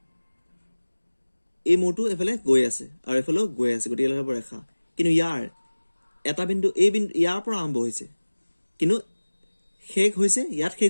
এই মূৰটো এইফালে গৈ আছে আৰু এইফালেও গৈ আছে, গতিকে এইডাল হ'ব ৰেখা। কিন্তু ইয়াৰ এটা বিন্দু, এই বিন্দু ইয়াৰ পৰা আৰম্ভ হৈছে, কিন্তু শেষ হৈছে ইয়াত,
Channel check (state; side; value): inverted; both; correlation -1.00